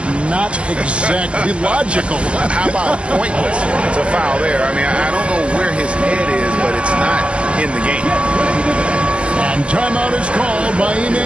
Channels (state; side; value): late; left; 0.054 ms